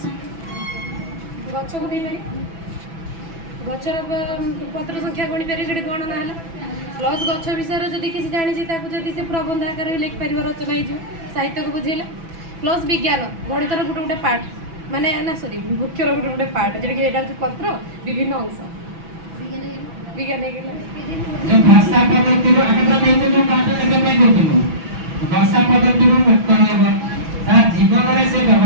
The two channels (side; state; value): left; late; 6.0 ms